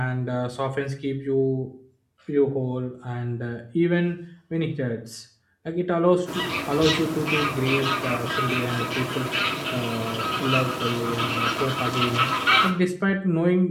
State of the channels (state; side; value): identical; both; correlation 1.00